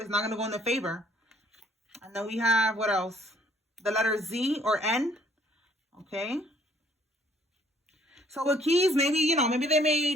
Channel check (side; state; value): both; normal; correlation 0.63